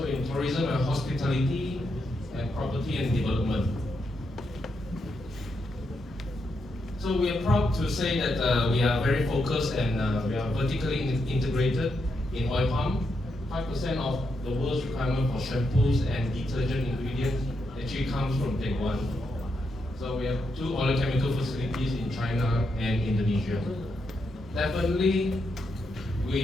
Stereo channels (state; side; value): normal; both; correlation 0.82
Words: in tourism and hospitality and property and development. So we are proud to say that we are very focused and we are vertically integrated in oil palm. 5% of the world's requirement for shampoos and detergent ingredients actually comes from Taiwan. So we have 2 oleochemical facilities in China and Indonesia. Definitely,